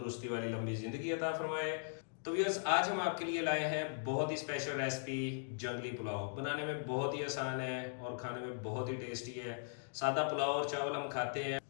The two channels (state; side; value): silent; right; digital silence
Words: वाली लंबी ज़िंदगी अता फरमाए। तो व्यूअर्स, आज हम आपके लिए लाए हैं बहुत ही स्पेशल रेसिपी, जंगली पुलाव। बनाने में बहुत ही आसान है और खाने में बहुत ही टेस्टी है। सादा पुलाव और चावल हम खाते हैं,